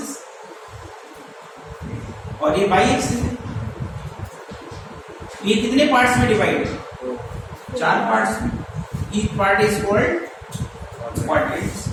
और ये बाई एक्सिस है। ये कितने पार्ट्स में डिवाइड है, 4 पार्ट्स में। Each part is called quadrants,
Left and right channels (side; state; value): both; identical; correlation 1.00